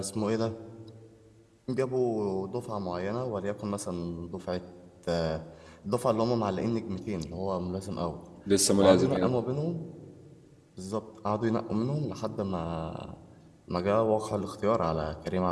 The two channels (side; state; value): both; identical; correlation 1.00